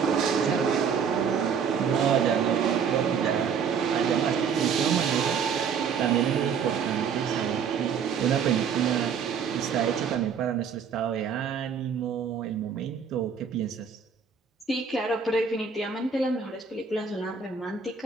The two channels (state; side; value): quieter; left; 6.6 dB